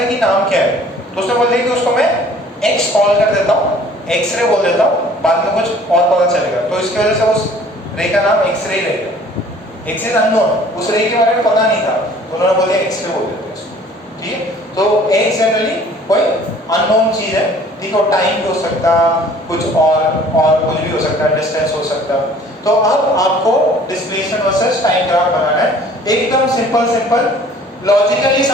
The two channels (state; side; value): normal; both; correlation 0.52